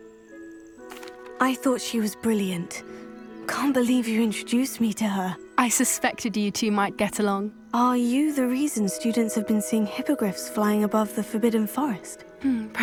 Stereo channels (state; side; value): identical; both; correlation 1.00